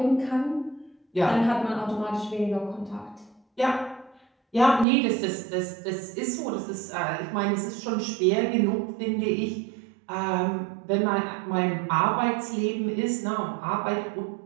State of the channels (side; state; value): left; drops out; at 4.9 s